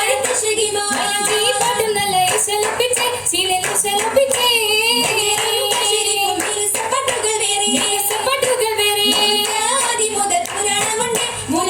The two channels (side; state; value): both; identical; correlation 1.00